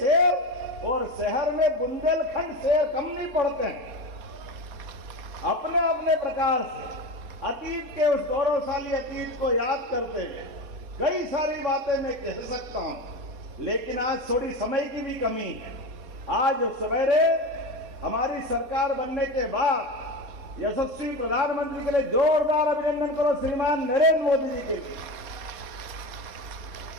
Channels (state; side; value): late; left; 3.5 ms